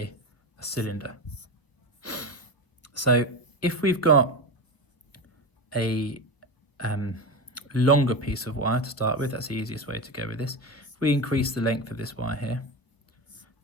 a cylinder. So if we've got a longer piece of wire to start with, that's the easiest way to go with this. If we increase the length of this wire here,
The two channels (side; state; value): right; late; 1.2 ms